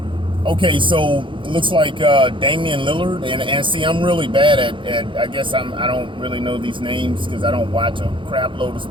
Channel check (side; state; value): left; late; 0.24 ms